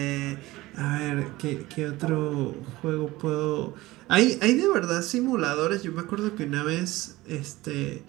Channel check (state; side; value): quieter; left; 18.9 dB